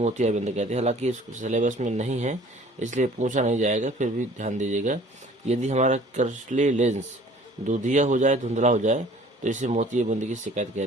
कहते हैं। हालांकि इस सिलेबस में नहीं है इसलिए पूछा नहीं जाएगा, फिर भी ध्यान दीजिएगा। यदि हमारा क्रिस्टलीय लेंस दूधिया हो जाए, धुंधला हो जाए, तो इसे मोतियाबिंद की शिकायत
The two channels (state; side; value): normal; both; correlation 0.51